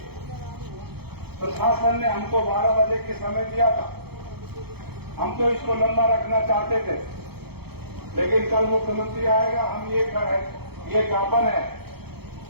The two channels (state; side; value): late; left; 0.96 ms